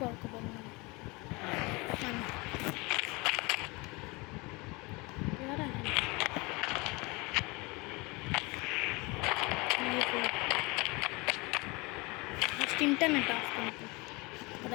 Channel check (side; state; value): right; quieter; 25.8 dB